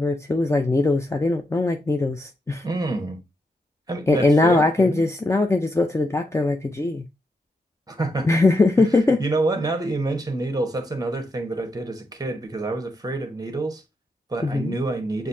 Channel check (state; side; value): normal; both; correlation 0.82